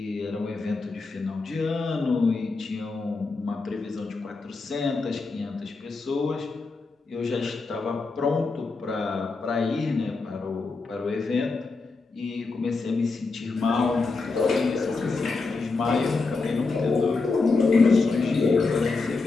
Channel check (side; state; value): right; quieter; 4.0 dB